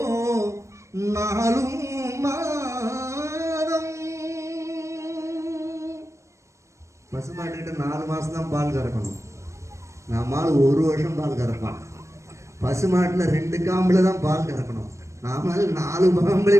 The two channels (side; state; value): left; late; 0.14 ms